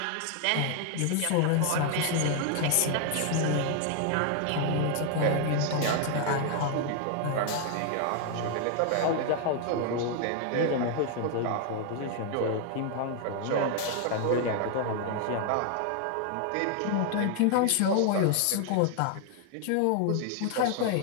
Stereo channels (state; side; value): different; both; correlation 0.00